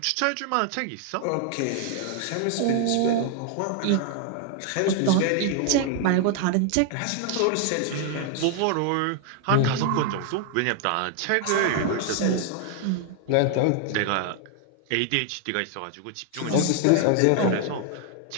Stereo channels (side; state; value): both; different; correlation 0.00